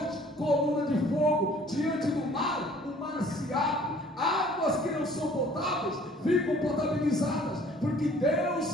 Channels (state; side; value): normal; both; correlation 0.55